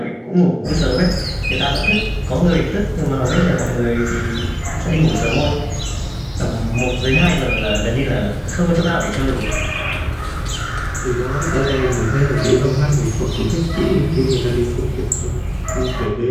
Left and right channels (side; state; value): both; identical; correlation 1.00